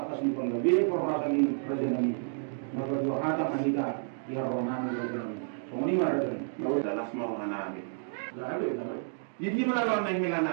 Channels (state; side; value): silent; left; digital silence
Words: di penggabi perasaan ini raja nabi. Maka dua kata kita ya rohani rohani. Semua ini mana tu? Lalu dalam semua rohani. Lalu. Jadi mana orang yang hilang